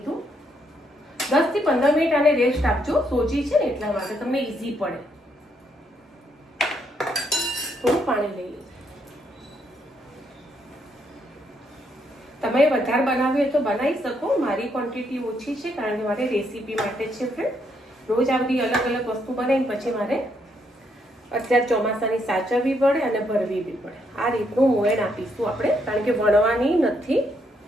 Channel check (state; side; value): normal; both; correlation 0.74